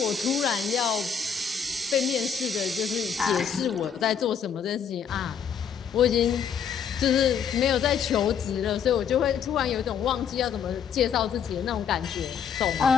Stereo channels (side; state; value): right; quieter; 7.4 dB